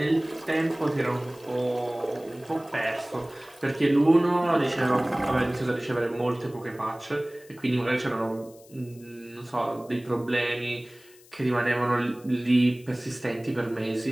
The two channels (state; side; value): noise; left; hiss, 25 dB below the sound